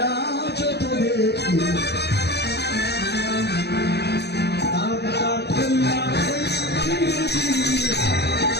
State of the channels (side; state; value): right; late; 0.48 ms